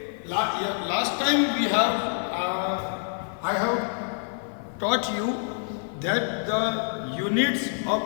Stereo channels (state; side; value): silent; right; 60 dB below the other